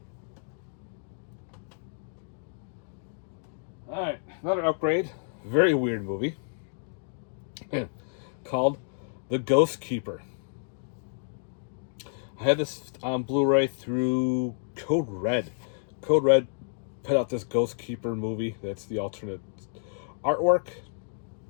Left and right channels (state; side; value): silent; right; digital silence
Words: Alright, another upgrade. Very weird movie. Called The Ghost Keeper. I had this on Blu-ray through Code Red. Code Red put out this Ghost Keeper movie. That's the alternate artwork.